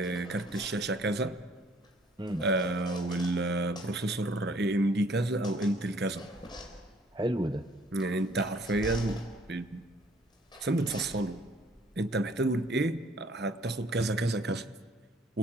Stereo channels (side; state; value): both; normal; correlation 0.60